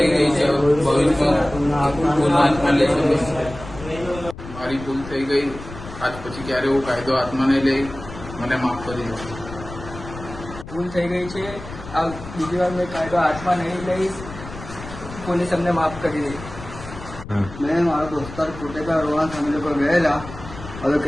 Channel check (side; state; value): left; noise; rumble, 13 dB below the sound